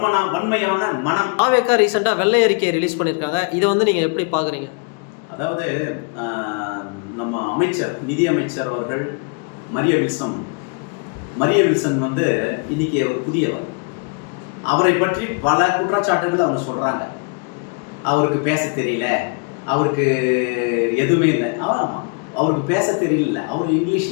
வன்மையான மனம். தாவேகா ரீசெண்டா வெள்ளை அறிக்கையை ரிலீஸ் பண்ணிருக்காங்க. இதை வந்து நீங்க எப்படி பாக்குறீங்க? அதாவது நம்ம அமைச்சர், நிதி அமைச்சர் அவர்கள் மரிய வில்சன் வந்து இன்னைக்கு ஒரு புதியவர். அவரை பற்றி பல குற்றச்சாட்டுகள் அவங்க சொல்றாங்க. அவருக்கு பேச தெரியல, அவருக்கு எதுவுமே இல்லை. ஆமாம், அவருக்கு பேச தெரியல, அவர்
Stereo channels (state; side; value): quieter; right; 34.5 dB